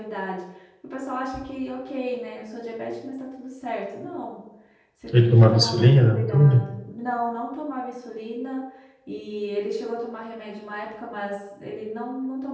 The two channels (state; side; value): identical; both; correlation 1.00